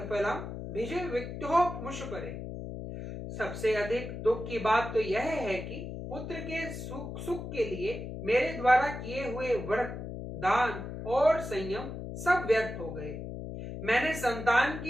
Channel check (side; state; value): left; noise; hum, 8 dB below the sound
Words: भिज विक्तो मुषपरे। सबसे अधिक दुख की बात तो यह है कि पुत्र के सुख के लिए मेरे द्वारा किए हुए व्रत, दान और संयम सब व्यर्थ हो गए। मैंने संतान